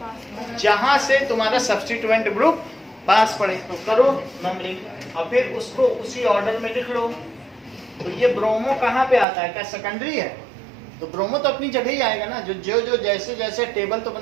जहां से तुम्हारा सब्स्टिट्यूएंट ग्रुप पास पड़े, तो करो नंबरिंग, और फिर उसको उसी ऑर्डर में लिख लो। तो ये ब्रोमो कहाँ पे आता है? क्या सेकेंडरी है? तो ब्रोमो तो अपनी जगह ही आएगा ना, जो जैसे जैसे टेबल तो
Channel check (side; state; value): left; drops out; at 9.2 s